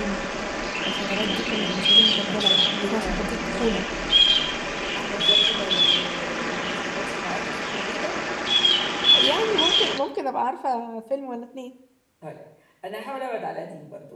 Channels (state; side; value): identical; both; correlation 1.00